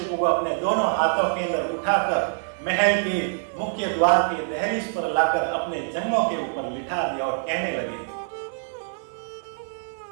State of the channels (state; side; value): silent; left; 62 dB below the other